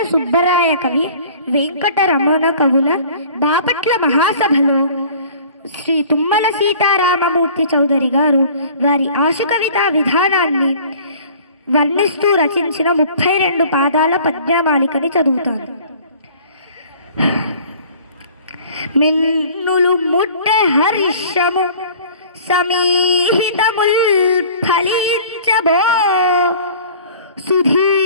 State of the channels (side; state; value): both; inverted; correlation -0.48